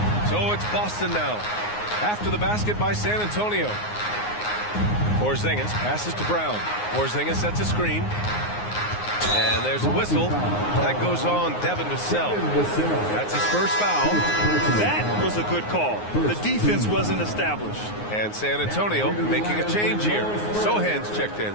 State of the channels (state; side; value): late; right; 9.6 ms